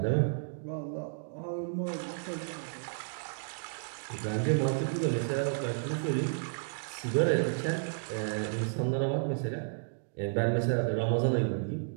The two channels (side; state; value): left; silent; digital silence